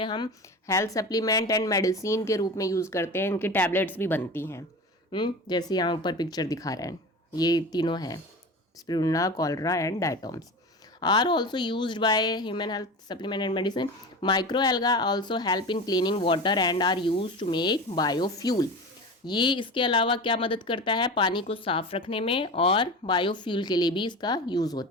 हम हेल्थ सप्लीमेंट एंड मेडिसिन के रूप में यूज़ करते हैं। इनकी टैबलेट्स भी बनती हैं, जैसे यहाँ ऊपर पिक्चर दिखा रहे हैं, ये तीनों हैं, spirulina, chlorella and diatoms. Are also used by human health supplement and medicine. Micro alga also help in cleaning water and are use to make biofuel. ये इसके अलावा क्या मदद करता है? पानी को साफ रखने में, और बायोफ्यूल के लिए भी इसका यूज़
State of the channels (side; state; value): both; normal; correlation 0.30